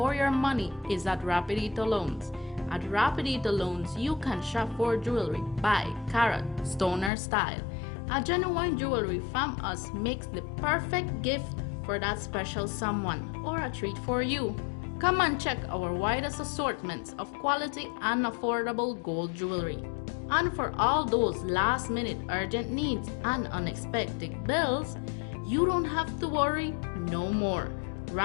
your money is at Rapidito Loans. At Rapidito Loans, you can shop for jewelry by carat, stoner style. A genuine jewelry from us makes the perfect gift for that special someone or a treat for you. Come and check our widest assortments of quality and affordable gold jewelry. And for all those last-minute urgent needs and unexpected bills, you don't have to worry no more.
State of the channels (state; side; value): drops out; right; at 7.1 s